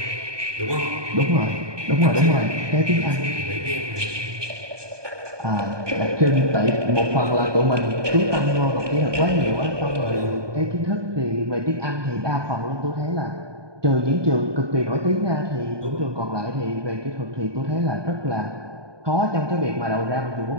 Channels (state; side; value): late; left; 1.2 ms